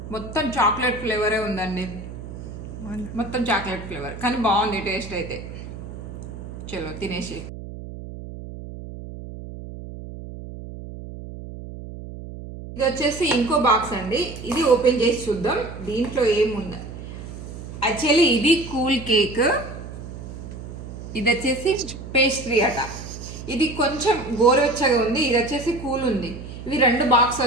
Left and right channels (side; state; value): right; noise; hum, 11 dB below the sound